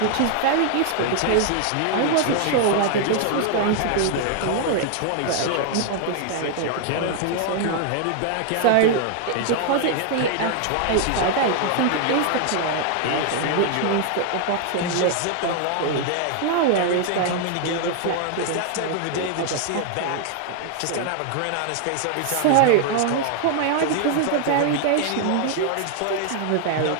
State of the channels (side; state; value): both; different; correlation 0.00